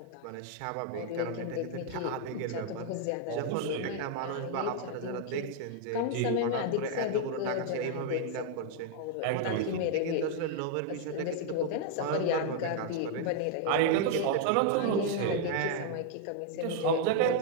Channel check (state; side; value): different; both; correlation 0.00